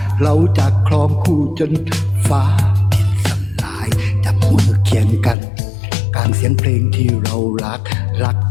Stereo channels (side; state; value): right; drops out; at 5.4 s